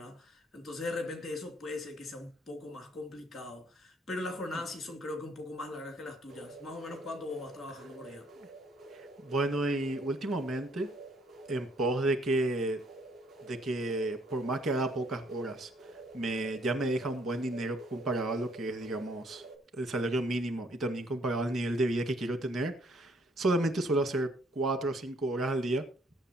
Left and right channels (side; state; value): both; normal; correlation 0.65